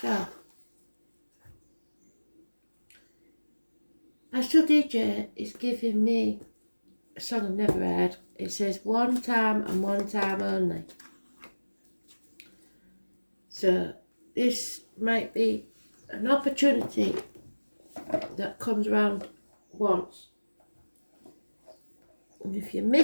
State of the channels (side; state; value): both; inverted; correlation -1.00